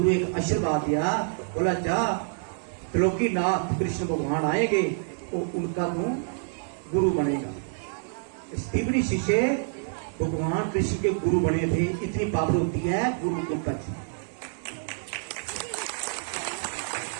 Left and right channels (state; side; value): silent; left; digital silence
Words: एक आशीर्वाद दिया, बोला जा त्रिलोकीनाथ कृष्ण भगवान आएंगे तो उनका तू गुरु बनेगा। स्त्रीवनी शिष्य भगवान कृष्ण के गुरु बने थे। इतनी पावर होती है गुरु को पच।